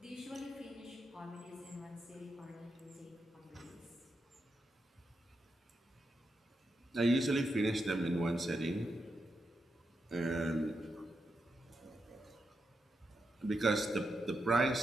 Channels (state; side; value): normal; both; correlation 0.85